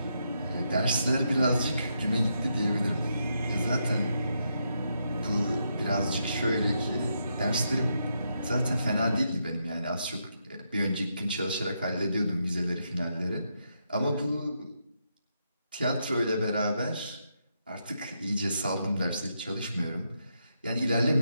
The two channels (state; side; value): inverted; both; correlation -0.81